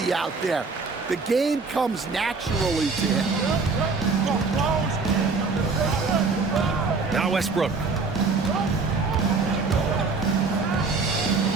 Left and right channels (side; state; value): left; quieter; 4.3 dB